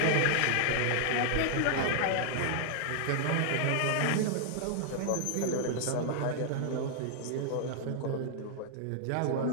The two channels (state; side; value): different; both; correlation 0.00